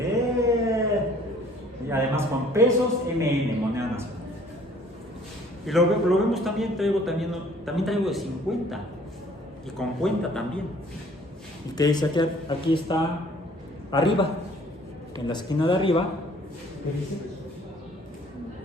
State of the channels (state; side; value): normal; both; correlation 0.56